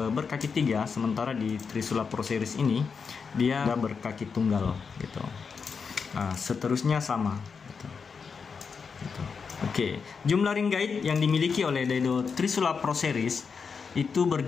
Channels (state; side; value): quieter; right; 5.6 dB